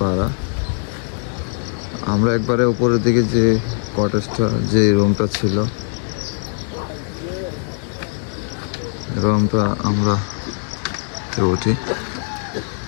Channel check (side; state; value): right; silent; 56 dB below the other